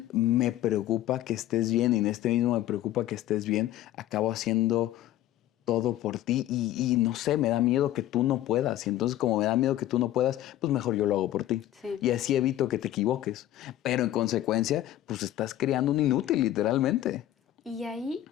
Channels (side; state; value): right; quieter; 13.5 dB